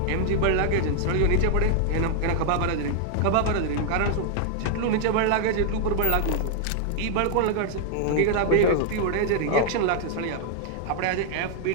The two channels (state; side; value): different; both; correlation 0.00